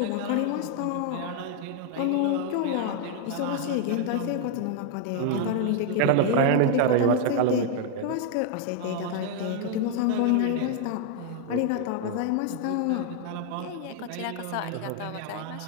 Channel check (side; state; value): both; different; correlation 0.00